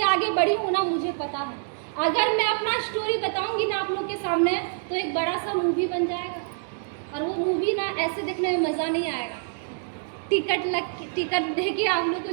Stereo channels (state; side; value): silent; left; digital silence